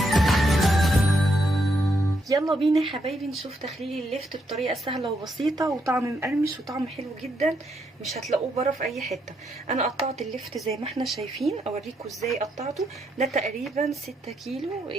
يلا بينا يا حبايبي نشوف تخليل الليفت بطريقه سهله وبسيطه وطعم مقرمش وطعم حلو جدا، مش هتلاقوه بره في اي حته. انا قطعت الليفت زي ما احنا شايفين، اوريكم ازاي قطعته. ده تقريبا 6 كيلو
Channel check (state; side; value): normal; both; correlation 0.78